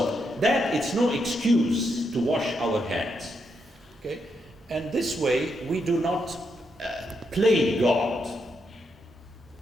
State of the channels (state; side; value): normal; both; correlation 0.81